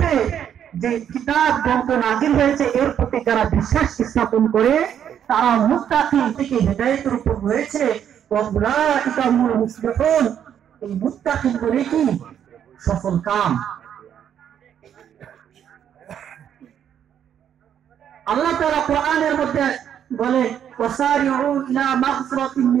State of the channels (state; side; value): quieter; left; 9.2 dB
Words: যে কিতাব গ্রন্থ নাযিল হয়েছে এর প্রতি যারা বিশ্বাস স্থাপন করে তারা মুত্তাকিন থেকে হেদায়েতের উপর রয়েছে। ওয়াউলাইকা হুমুল মুফলিহুন, এই মুত্তাকিন বলে কি সফল কাম। আল্লাহ তাআলা কোরআনের মধ্যে বলে ওয়াসারিউ ইলা মাগফিরাতিন